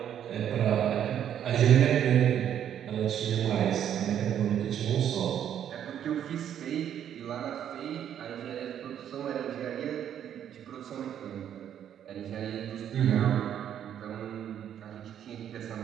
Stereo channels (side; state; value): left; quieter; 9.8 dB